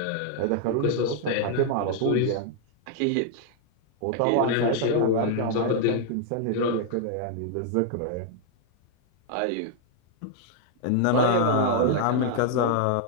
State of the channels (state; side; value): different; both; correlation 0.00